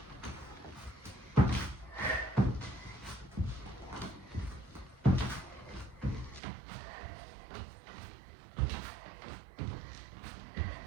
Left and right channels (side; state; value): left; drops out; at 6.4 s